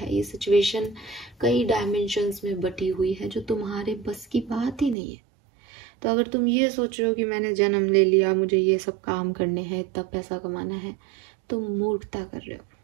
ये सिचुएशन कई डायमेंशंस में बटी हुई है जो तुम्हारे बस की बात ही नहीं है। तो अगर तुम ये सोच रहे हो कि मैंने जन्म ले लिया, मुझे ये सब काम करने हैं, इतना पैसा कमाना है, तुम मूर्खता कर रहे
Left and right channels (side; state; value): left; drops out; at 5.0 s